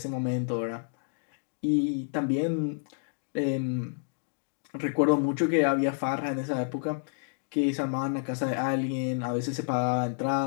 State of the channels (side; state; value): right; silent; digital silence